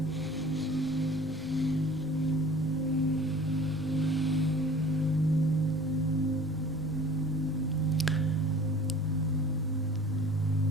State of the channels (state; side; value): normal; both; correlation 0.46